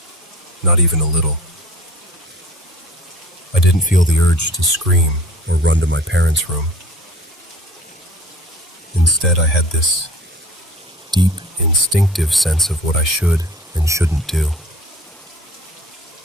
not even a little. I didn't feel the urge to scream or run to my parents' room. Instead, I had this deep, instinctive sense of what I should and shouldn't do.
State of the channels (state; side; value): normal; both; correlation 0.47